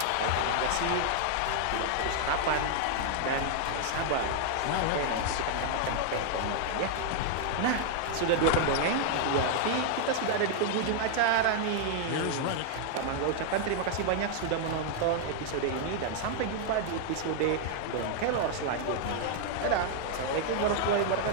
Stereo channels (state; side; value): different; both; correlation 0.00